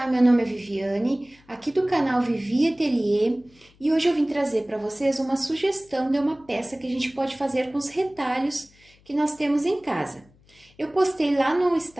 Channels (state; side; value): noise; left; hum, 30 dB below the sound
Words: meu nome é Viviane, aqui do canal Vivi Atelier, e hoje eu vim trazer para vocês uma sugestão de uma peça que a gente pode fazer com os retalhos que nós temos em casa. Eu postei lá no